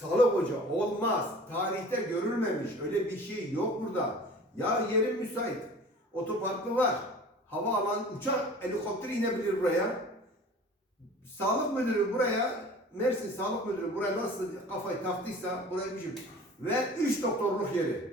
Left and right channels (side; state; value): both; normal; correlation 0.43